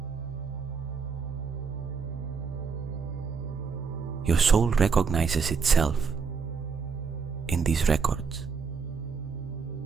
Your soul recognizes itself in these records.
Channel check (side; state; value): left; quieter; 5.6 dB